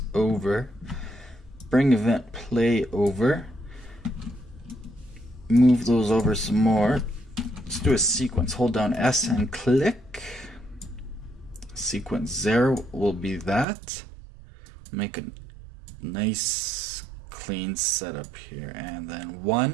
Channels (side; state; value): left; drops out; at 13.7 s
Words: over, bring event play over, move those over some more. Let's do a sequence. Hold down S and click. Sequence 0 will be that. Make a nice clean setup here, and then